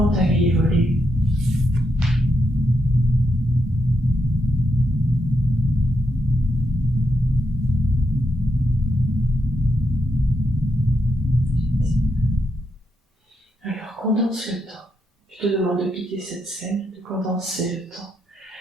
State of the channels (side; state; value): both; normal; correlation 0.81